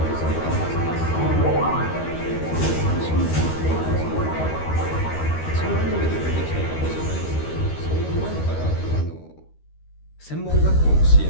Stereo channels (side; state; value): right; late; 13 ms